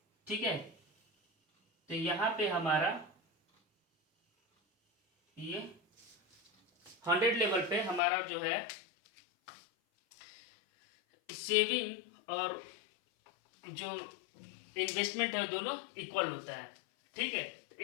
ठीक है, तो यहाँ पे हमारा ये 100 लेवल पे हमारा जो है सेविंग और जो इन्वेस्टमेंट है दोनों इक्वल होता है। ठीक है,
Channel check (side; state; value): right; drops out; at 8.0 s